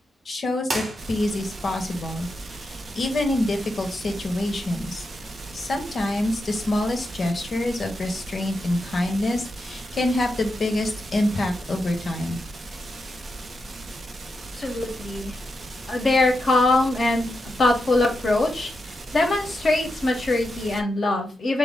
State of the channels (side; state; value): both; normal; correlation 0.87